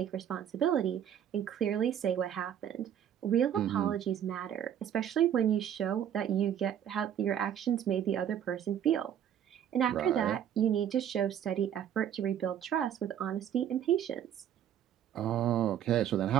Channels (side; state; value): left; quieter; 9.7 dB